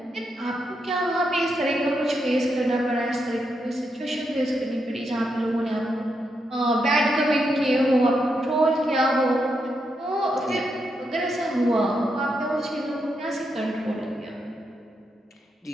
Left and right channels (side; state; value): both; normal; correlation 0.82